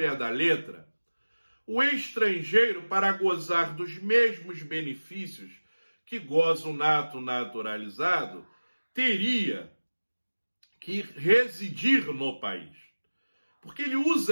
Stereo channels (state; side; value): inverted; both; correlation -1.00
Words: da letra, o estrangeiro, para gozar dos mesmos benefícios que goza o nato naturalizado, teria que residir no país. Porque ele